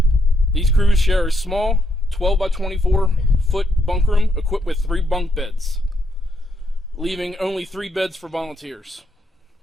These crews share a small 12 by 24 foot bunk room equipped with 3 bunk beds, leaving only 3 beds for volunteers.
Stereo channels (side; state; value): both; normal; correlation 0.77